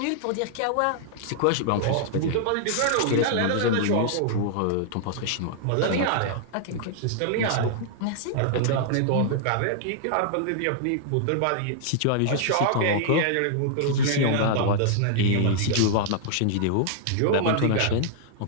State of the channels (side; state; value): both; different; correlation -0.01